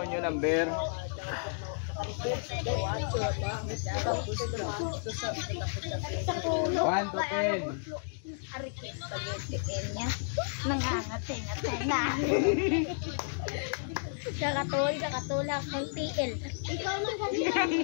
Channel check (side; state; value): right; silent; digital silence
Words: yung number. 1 to 10. Kakatulak ng TL. Ikaw man kasi